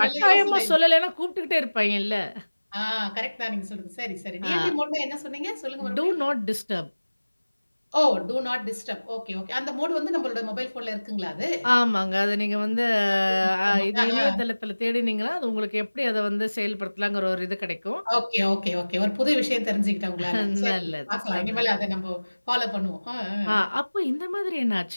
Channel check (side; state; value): both; inverted; correlation -1.00